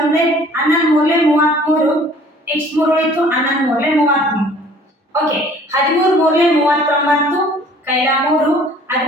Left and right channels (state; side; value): normal; both; correlation 0.53